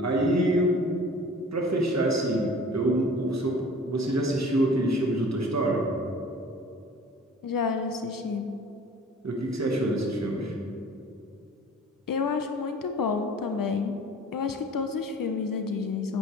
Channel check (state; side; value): normal; both; correlation 0.45